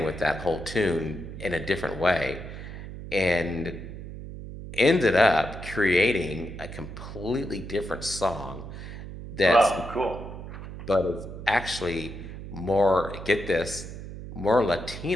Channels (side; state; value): right; noise; hum, 11 dB below the sound